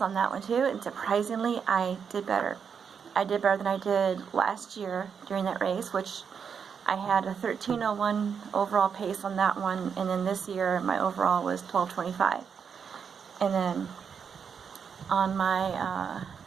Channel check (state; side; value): quieter; left; 6.7 dB